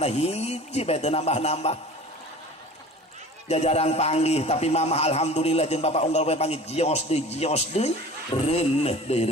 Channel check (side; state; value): both; normal; correlation 0.41